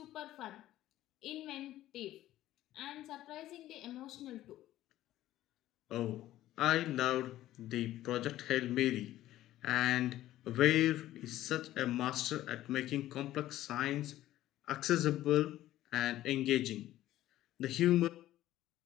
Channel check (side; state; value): right; quieter; 14.3 dB